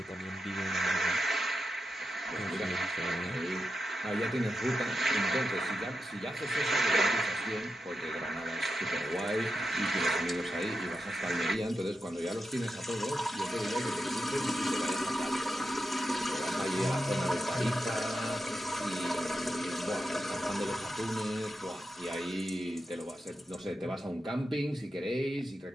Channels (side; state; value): both; normal; correlation 0.89